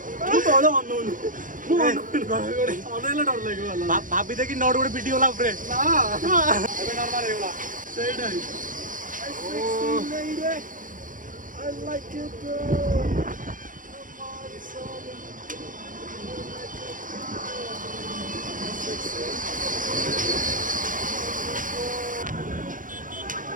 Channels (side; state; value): left; late; 0.39 ms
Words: तू तो वाला मन अनेला डर लागो वाला भाभी देखी नॉट गोटे वीडियो ला ऊपर ना एबे नॉर्मल हे गला सही नहीं I like it